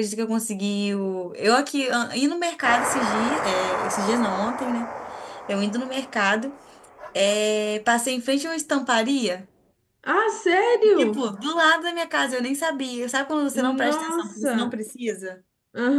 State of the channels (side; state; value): both; identical; correlation 1.00